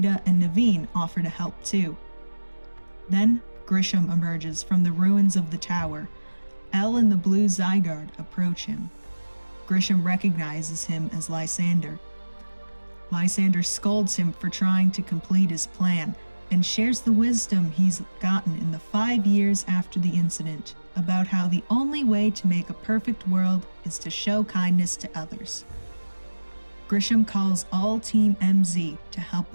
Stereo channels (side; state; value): both; inverted; correlation -1.00